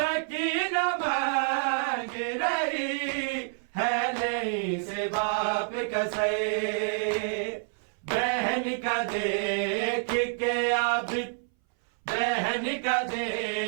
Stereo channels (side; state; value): left; silent; 59 dB below the other